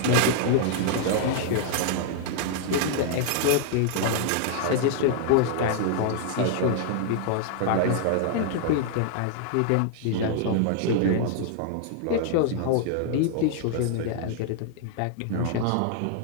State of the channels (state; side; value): different; both; correlation 0.00